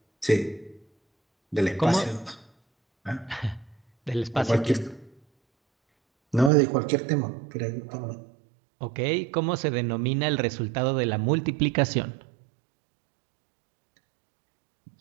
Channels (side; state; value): left; drops out; at 6.5 s